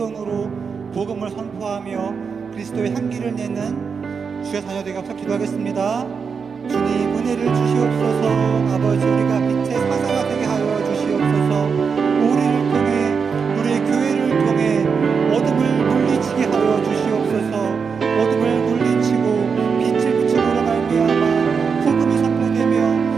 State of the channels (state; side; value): quieter; left; 5.8 dB